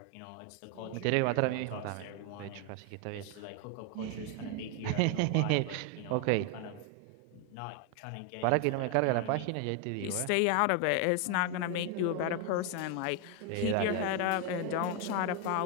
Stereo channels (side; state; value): both; different; correlation 0.01